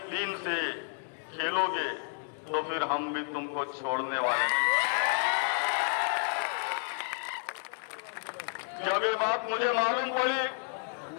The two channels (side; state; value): right; silent; 57 dB below the other